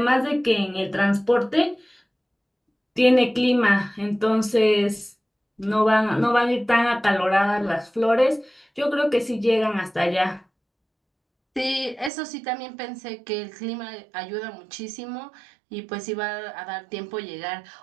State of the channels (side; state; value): left; drops out; at 12.1 s